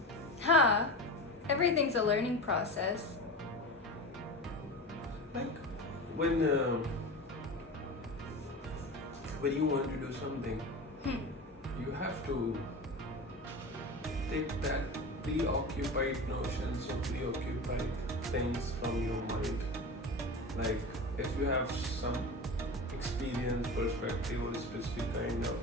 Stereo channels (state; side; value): normal; both; correlation 0.28